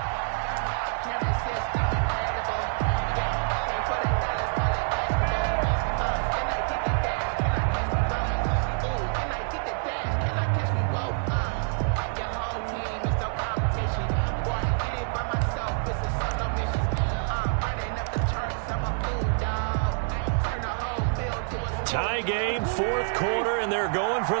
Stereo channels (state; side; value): silent; left; 60 dB below the other